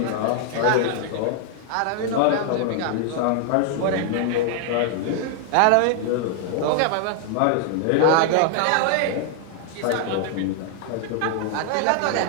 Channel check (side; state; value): both; different; correlation 0.00